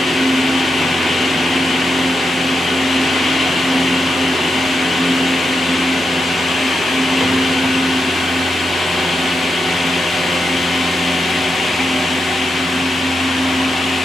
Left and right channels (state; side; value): normal; both; correlation 0.86